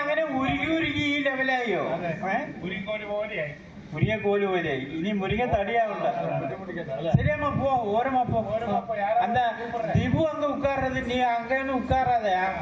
അങ്ങനെ ഉരുകി ഈ ലെവലായോ? മുരിങ്ങ കോല് പോലെയായി. ഇനി മുരിങ്ങ തടിയാവണ്ട. ശരിയമ്മ പോ, ഓരമ്മ പോ. அந்த திபு அங்க உட்கார்றது, நீ அங்கன்னு உட்காராத,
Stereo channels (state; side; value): identical; both; correlation 1.00